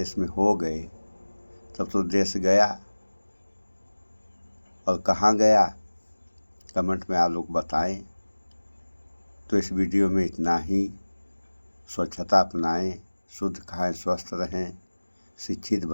में हो गए तब तो देश गया। और कहाँ गया, कमेंट में आप लोग बताएं। तो इस वीडियो में इतना ही। स्वच्छता अपनाएं, शुद्ध खाएं, स्वस्थ रहें, शिक्षित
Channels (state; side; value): inverted; both; correlation -1.00